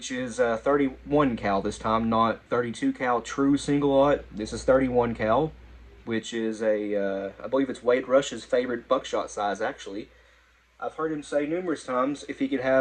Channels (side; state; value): both; identical; correlation 1.00